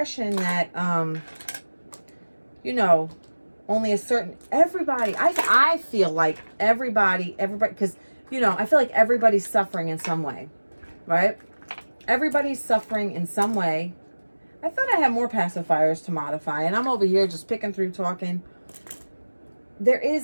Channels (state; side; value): inverted; both; correlation -1.00